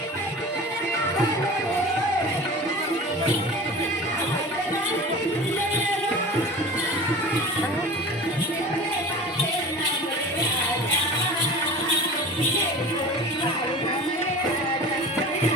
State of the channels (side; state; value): both; normal; correlation 0.36